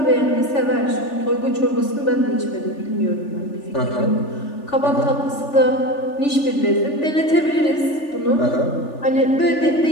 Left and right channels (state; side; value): late; right; 3.4 ms